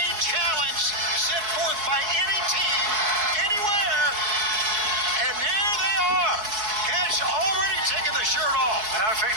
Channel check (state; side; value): late; left; 4.6 ms